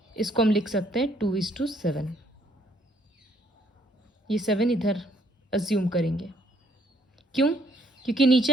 इसको हम लिख सकते हैं 2:7। ये 7 इधर अज्यूम करेंगे, क्यों, क्योंकि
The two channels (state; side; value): normal; both; correlation 0.67